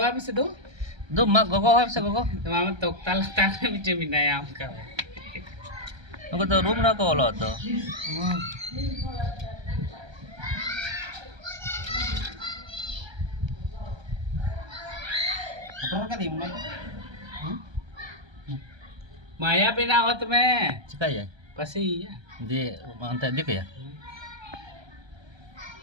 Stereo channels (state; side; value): late; left; 1.3 ms